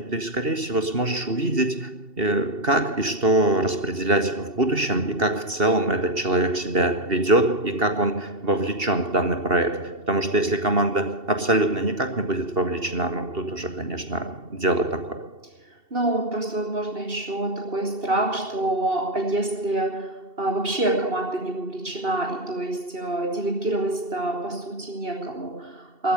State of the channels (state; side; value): late; left; 2.7 ms